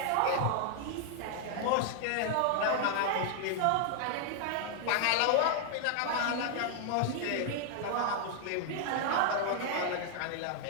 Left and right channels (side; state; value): both; different; correlation 0.00